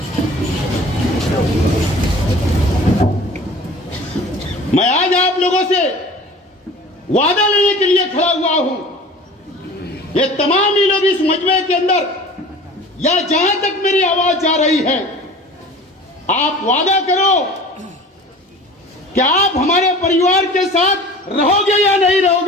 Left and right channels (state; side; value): normal; both; correlation 0.42